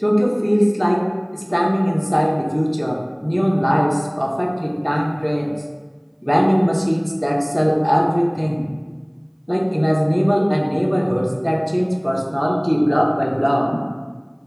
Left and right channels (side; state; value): both; identical; correlation 1.00